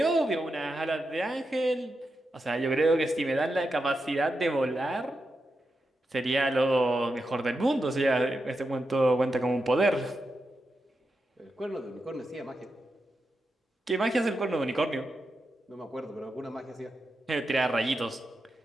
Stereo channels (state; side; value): normal; both; correlation 0.87